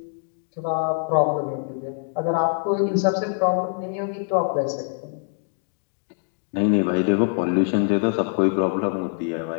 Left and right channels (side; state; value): right; silent; 57 dB below the other